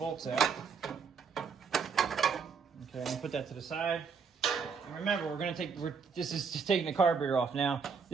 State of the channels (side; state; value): left; quieter; 5.8 dB